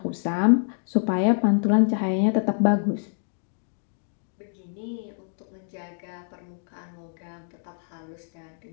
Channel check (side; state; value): right; silent; digital silence